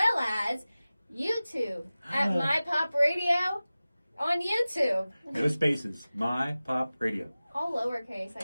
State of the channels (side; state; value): both; inverted; correlation -0.97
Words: as YouTube at My Pop Radio on YouTube. No spaces. My Pop Radio. All lowercase, I